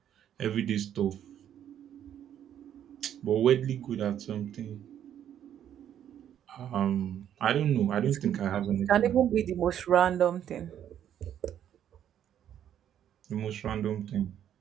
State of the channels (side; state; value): left; quieter; 10.1 dB